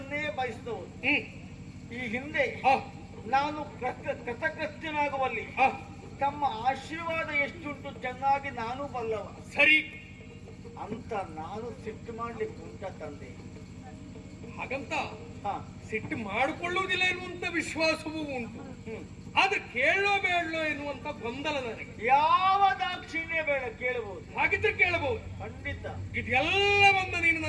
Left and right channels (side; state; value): both; identical; correlation 1.00